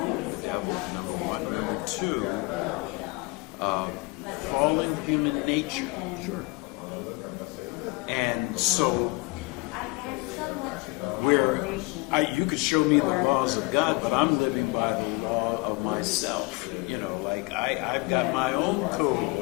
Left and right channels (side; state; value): right; quieter; 26.5 dB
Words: devil, number one. Number two, fallen human nature. Sure. And so, where you could show me the laws of God, but I'm living by the law of myself. You know, like I've got my own code